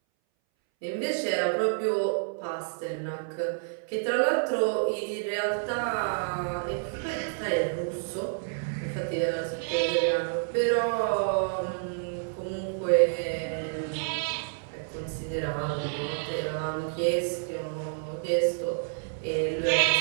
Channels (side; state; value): left; silent; 59 dB below the other